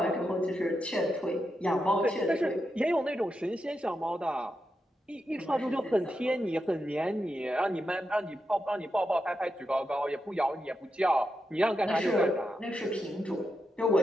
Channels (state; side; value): normal; both; correlation 0.86